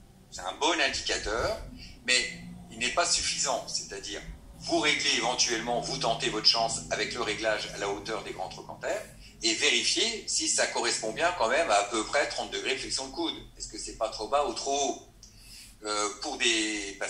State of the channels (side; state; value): both; identical; correlation 1.00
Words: un bon indicateur, mais il n'est pas suffisant. C'est-à-dire, vous réglez éventuellement, vous tentez votre chance avec le réglage à la hauteur des grands trochantères, et vérifiez si ça correspond bien quand même à peu près 30 degrés de flexion de coude. Est-ce que c'est pas trop bas ou trop haut? Pour des